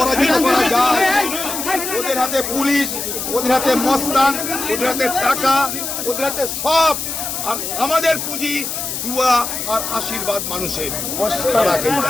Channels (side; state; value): left; noise; hiss, 4 dB below the sound